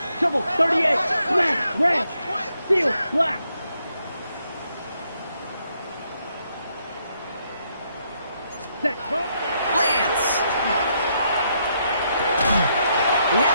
shovel, 38, black, red, seal, black. Set. Lance. He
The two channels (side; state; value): both; inverted; correlation -0.76